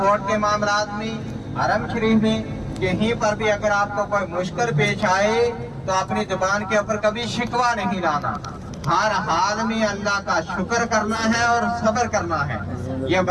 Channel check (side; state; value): both; identical; correlation 1.00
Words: के मामलात में, हरम शरीफ में, कहीं पर भी अगर आपको कोई मुश्किल पेश आए तो अपनी जुबान के ऊपर कभी शिकवा नहीं लाना। हर हाल में अल्लाह का शुक्र करना है और सब्र करना है। ये